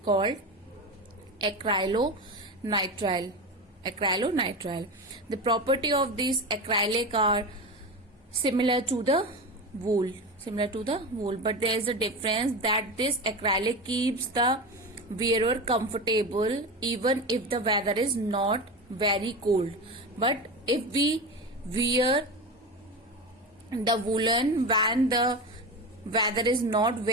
called acrylonitrile. The property of these acrylic are similar to the wool, but there is a difference that this acrylic keeps the wearer comfortable even if the weather is not very cold. But if we wear the woolen when the weather is not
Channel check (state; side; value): normal; both; correlation 0.23